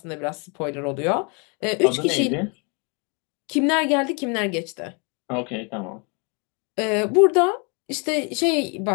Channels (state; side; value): quieter; right; 33.7 dB